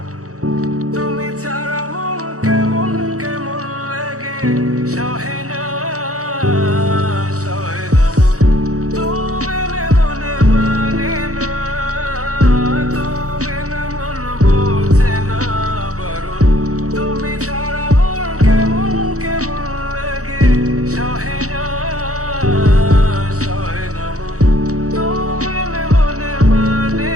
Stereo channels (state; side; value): late; left; 0.65 ms